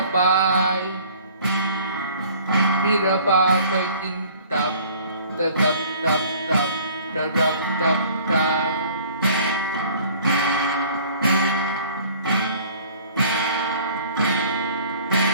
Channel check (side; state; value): both; inverted; correlation -0.50